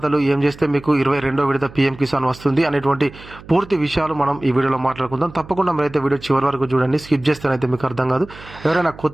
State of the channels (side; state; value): right; noise; hum, 19 dB below the sound